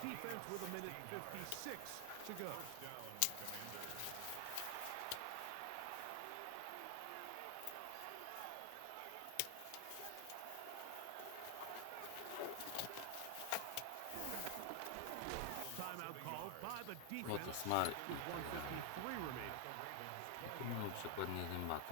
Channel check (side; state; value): both; different; correlation 0.00